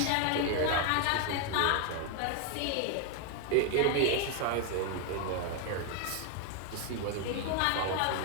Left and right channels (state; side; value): different; both; correlation 0.01